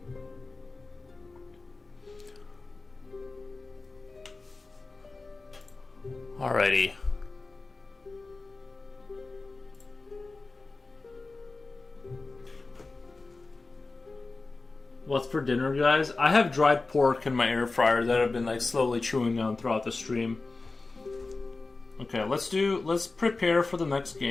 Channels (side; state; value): right; quieter; 3.6 dB